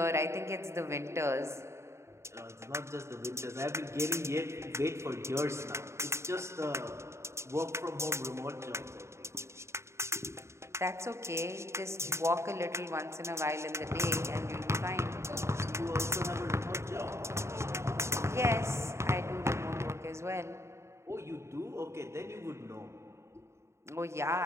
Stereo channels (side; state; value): left; late; 0.13 ms